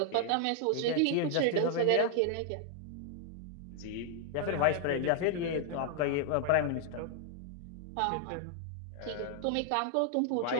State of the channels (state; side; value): different; both; correlation 0.00